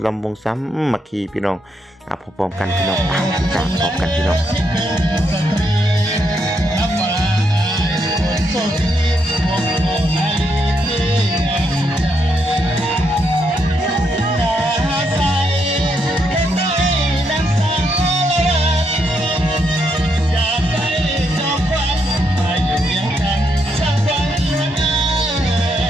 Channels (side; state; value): both; normal; correlation 0.78